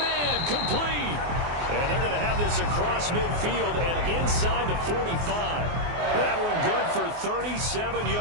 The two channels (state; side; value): late; left; 24 ms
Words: complete. And they're going to have this across midfield and inside the 45. That one good for 37